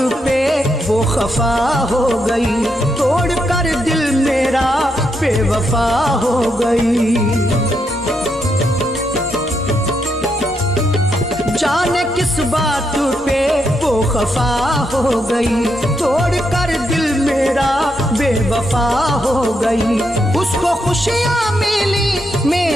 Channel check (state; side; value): normal; both; correlation 0.80